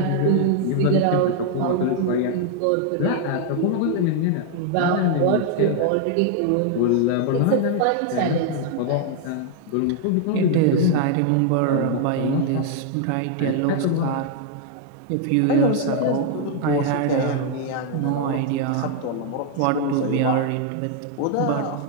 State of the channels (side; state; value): both; different; correlation 0.00